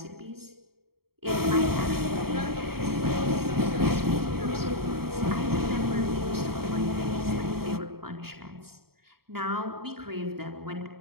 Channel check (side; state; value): left; late; 0.95 ms